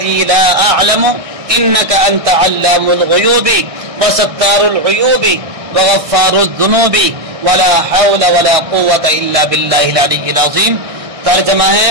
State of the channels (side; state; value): left; late; 1.6 ms